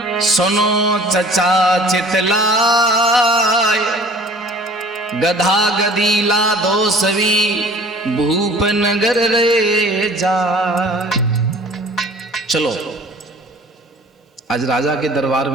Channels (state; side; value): normal; both; correlation 0.48